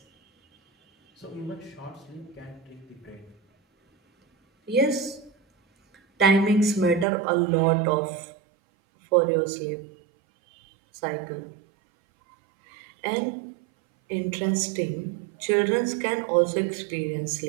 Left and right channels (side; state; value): left; drops out; at 7.1 s